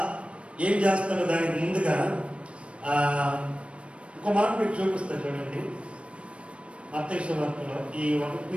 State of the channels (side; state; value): left; late; 0.060 ms